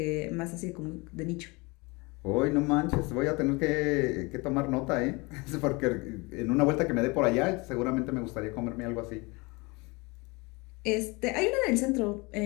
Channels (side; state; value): right; quieter; 26.4 dB